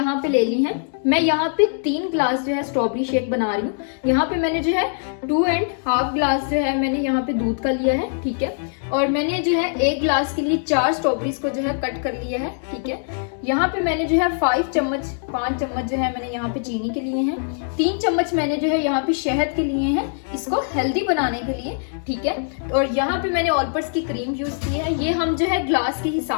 पे ले ली हैं। मैं यहाँ पे 3 ग्लास जो है स्ट्रॉबेरी शेक बना रही हूँ। यहाँ पे मैंने जो है 2.5 ग्लास जो है मैंने यहाँ पे दूध का लिया है, ठीक है। और मैंने जो है 1 ग्लास के लिए 4 स्ट्रॉबेरीज को जो है कट कर लिया है, ठीक है। यहाँ पे मैंने जो है 5 चम्मच जो है मैंने यहाँ पे चीनी के लिए हैं। 3 चम्मच मैंने जो है यहाँ पे शहद के लिए हैं, इसको हेल्दी बनाने के लिए, ठीक है। और यहाँ पे मैंने ऑल पर्पस की क्रीम यूज की है। ये हम जो है ग्लास के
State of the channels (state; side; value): silent; right; digital silence